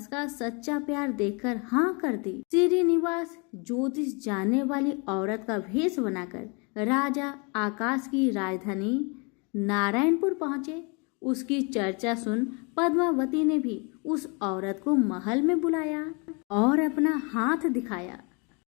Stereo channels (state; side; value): quieter; right; 32.4 dB